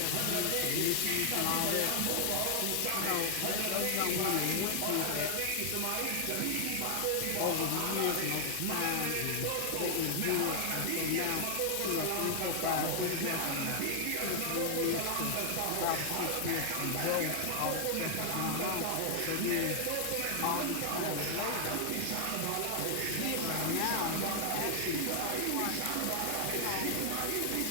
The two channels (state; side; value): different; both; correlation 0.00